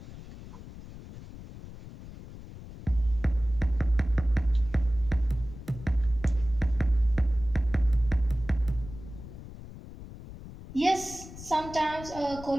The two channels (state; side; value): noise; left; rumble, 14 dB below the sound